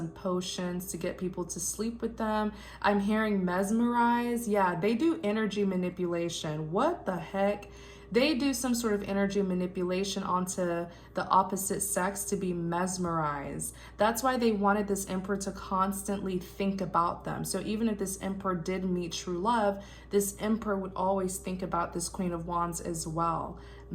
potions to get people to sleep with them. I'm hearing mesmerize. Yeah, they do energy manipulation. What the heck? They do some sort of energy manipulation onto the opposite sex to be mesmerized. That's why they wanted this emperor to constantly think about them. So even if this emperor did meet true love, this emperor would always think about this Queen of Wands as well.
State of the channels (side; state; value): both; identical; correlation 1.00